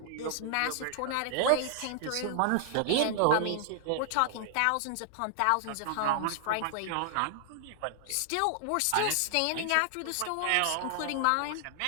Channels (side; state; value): both; different; correlation 0.00